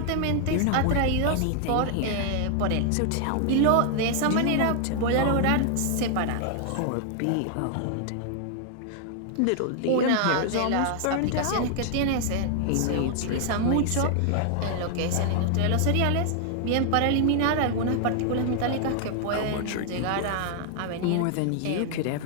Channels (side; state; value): both; different; correlation 0.00